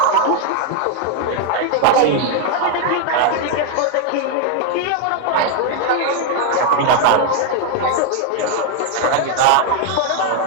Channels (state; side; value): different; both; correlation 0.00